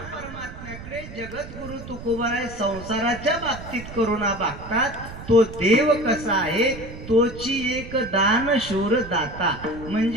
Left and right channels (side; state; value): right; noise; rumble, 13 dB below the sound